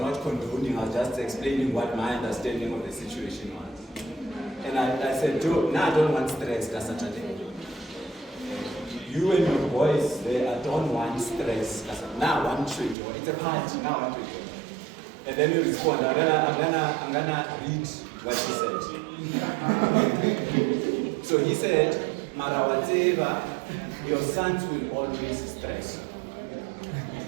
condoning, I was just explaining what my understanding of the situation was. And I said, I don't want stress that Saturday. You and your boys, I don't want stress. I said, now I want to enjoy. It's a party, now I want to enjoy. And then he responded, I'm gonna read what he said. So he said, Marawateva, your sons will always stress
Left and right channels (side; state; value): left; drops out; at 13.0 s